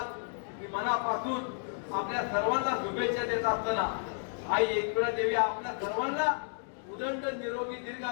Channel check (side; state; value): right; silent; 56 dB below the other